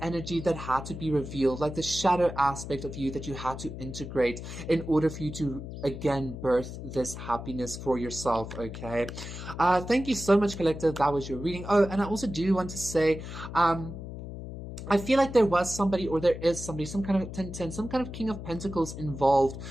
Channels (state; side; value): noise; left; hum, 9 dB below the sound